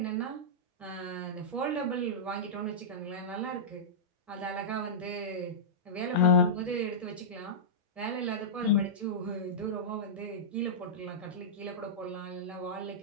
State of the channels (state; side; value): normal; both; correlation -0.14